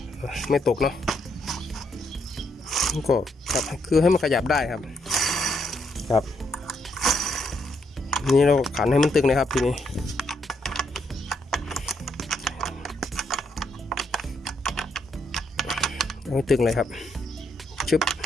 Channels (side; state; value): both; normal; correlation 0.75